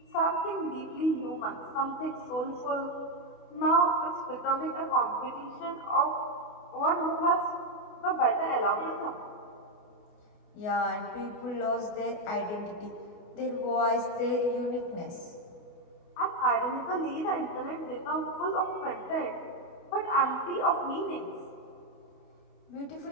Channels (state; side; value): late; right; 28 ms